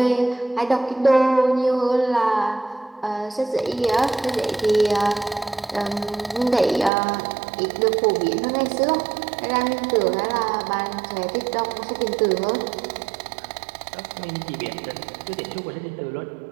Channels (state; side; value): drops out; left; at 6.9 s